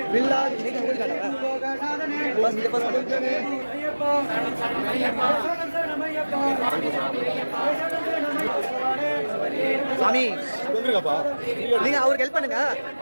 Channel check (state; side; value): inverted; both; correlation -1.00